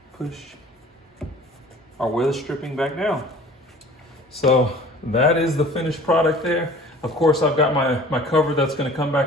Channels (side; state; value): both; normal; correlation 0.47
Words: push our weather stripping back down. So that is the finished product there. Of course, I've got my cover that's going to come